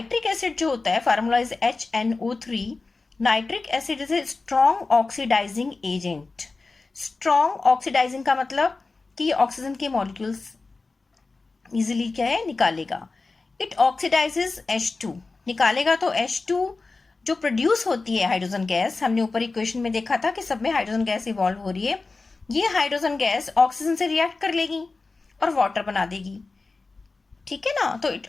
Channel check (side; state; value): right; quieter; 3.8 dB